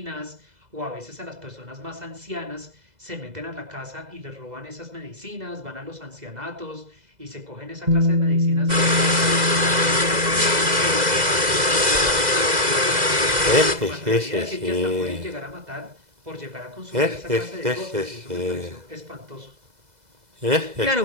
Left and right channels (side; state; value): left; late; 2.0 ms